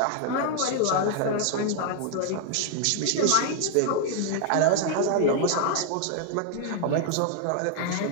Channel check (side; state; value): both; different; correlation 0.00